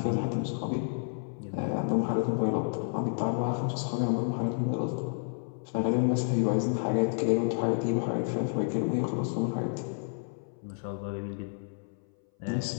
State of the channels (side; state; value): right; silent; 58 dB below the other